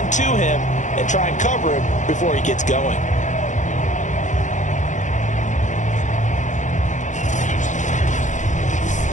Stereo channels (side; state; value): right; late; 0.36 ms